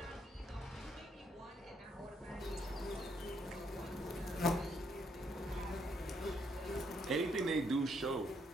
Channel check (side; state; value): both; normal; correlation 0.73